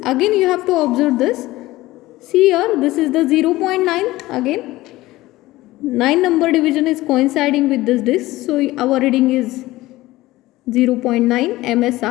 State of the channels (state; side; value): quieter; right; 17.9 dB